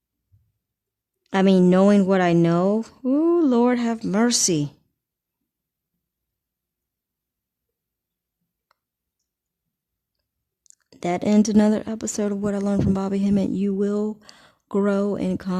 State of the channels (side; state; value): both; identical; correlation 1.00